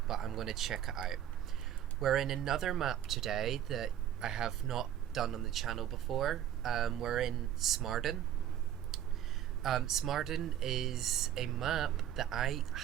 going to check it out. We're in another map today that I have not done on the channel before. We're in Smarden. Smarden is a map that I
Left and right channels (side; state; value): left; quieter; 10.7 dB